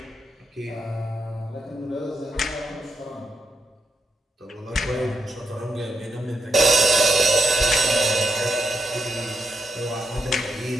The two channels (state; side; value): normal; both; correlation 0.81